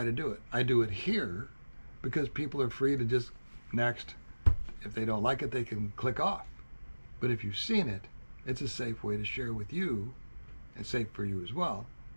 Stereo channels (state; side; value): inverted; both; correlation -1.00